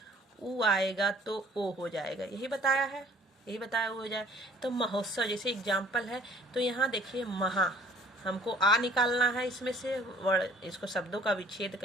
ऊ आएगा तो ओ हो जाएगा, यही बताया है, यही बताया हो जाए। तो महोत्सव जैसे एग्जाम्पल है, तो यहाँ देखिए महा, हमको आ निकालना है इसमें से वर्ड, इसको शब्दों का विच्छेद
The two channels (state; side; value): normal; both; correlation 0.55